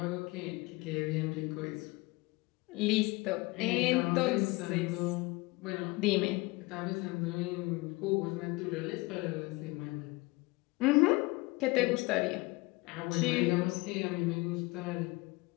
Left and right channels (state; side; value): quieter; right; 23.7 dB